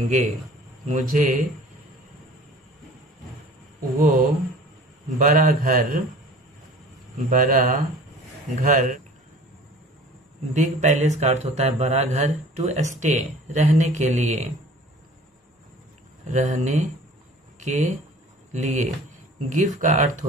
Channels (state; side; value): normal; both; correlation 0.45